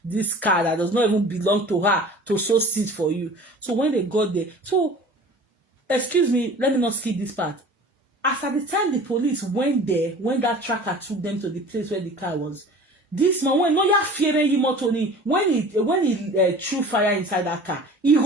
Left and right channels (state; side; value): normal; both; correlation 0.43